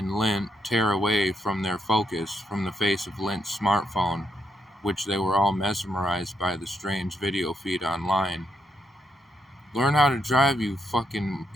Lint tear away from their focus from the face of Lint's smartphone, which they were all mesmerized by the strange video feed online. Learn how to drive, you fucking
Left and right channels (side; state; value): both; normal; correlation 0.78